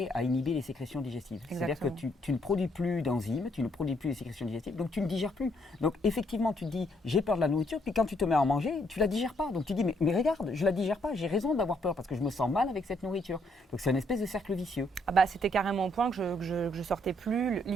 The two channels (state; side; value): normal; both; correlation 0.71